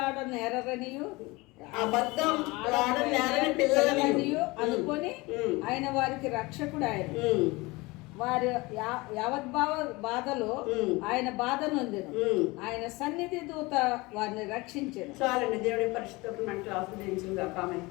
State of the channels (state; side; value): quieter; right; 23.3 dB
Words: నేరరనియు పిల్లలనియు అనుకొని ఆయన వారికి రక్షకుడు. ఆయన వారి బాధలో ఆయన బాధ నొందెను. ఆయన సన్నిధి దూత వారిని రక్షించారు. చాలండి. దేవుడి పరిశుద్ధతను మనకు ఆస్వాదించుగా. ఆమె